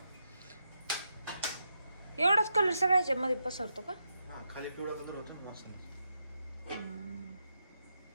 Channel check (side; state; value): both; inverted; correlation -0.84